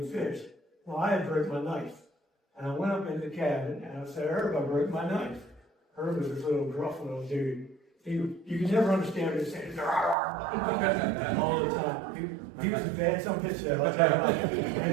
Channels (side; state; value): left; drops out; at 10.2 s